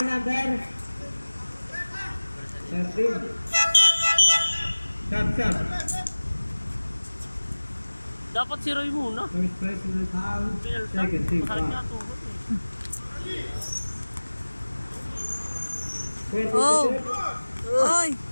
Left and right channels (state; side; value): inverted; both; correlation -1.00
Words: number 13. Sub. Dapat si Roy muna. First personal foul. Second team Masakit nga foul. tuhod eh. Oh. Ay.